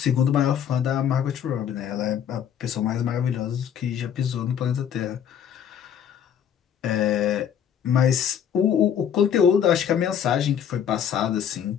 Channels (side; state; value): right; quieter; 8.8 dB